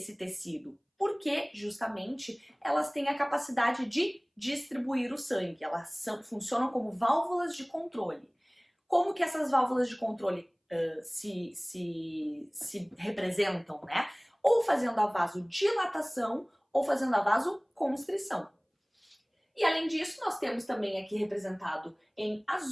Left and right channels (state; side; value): identical; both; correlation 1.00